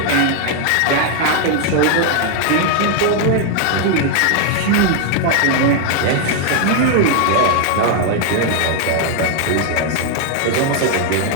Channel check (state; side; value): different; both; correlation 0.00